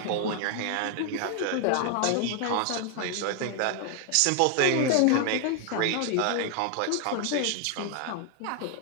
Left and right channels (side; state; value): both; different; correlation 0.00